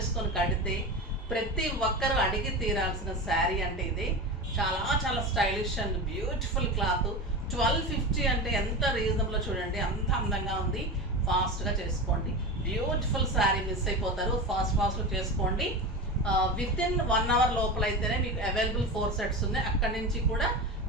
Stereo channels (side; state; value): both; normal; correlation 0.25